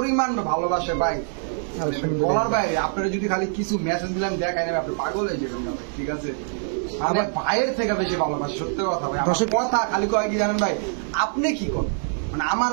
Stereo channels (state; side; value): silent; left; 62 dB below the other